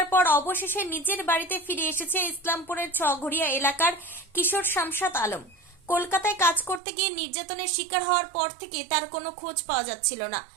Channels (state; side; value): drops out; left; at 6.8 s